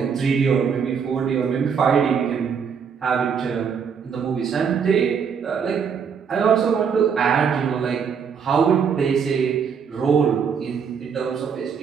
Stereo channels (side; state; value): left; quieter; 6.7 dB